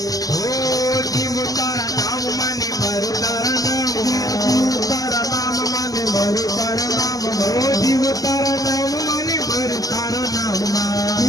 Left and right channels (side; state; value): right; late; 0.17 ms